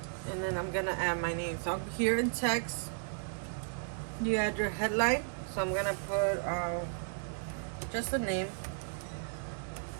And then I'm gonna add my name. So here in text, you add your headline. So I'm gonna put just a name.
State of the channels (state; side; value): silent; left; digital silence